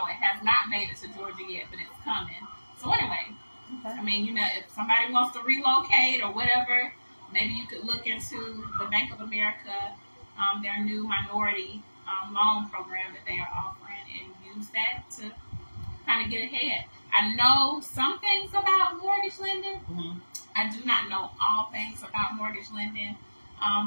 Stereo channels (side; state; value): both; inverted; correlation -1.00